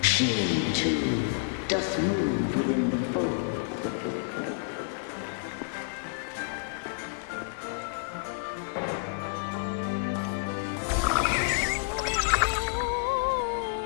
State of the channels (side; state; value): right; silent; digital silence